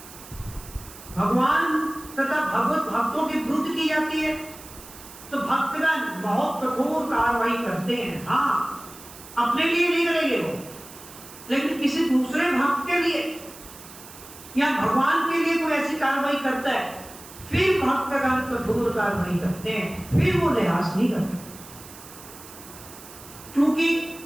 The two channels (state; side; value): noise; right; hiss, 17 dB below the sound